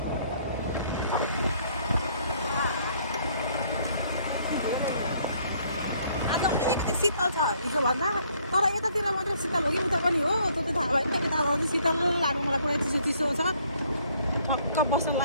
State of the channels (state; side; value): inverted; both; correlation -0.64